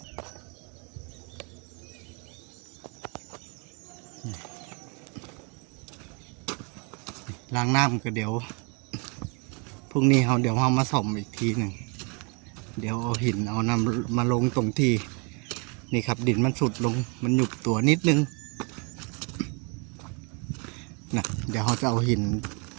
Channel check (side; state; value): left; quieter; 33.7 dB